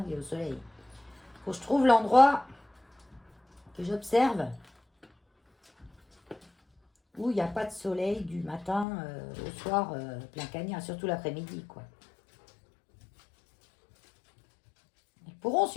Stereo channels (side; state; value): right; drops out; at 8.8 s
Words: il est au soleil. Faut que je trouve l'endroit que j'observe où il n'y a pas de soleil du matin au soir plein cagnard, surtout l'après-midi, quoi. Ils pourront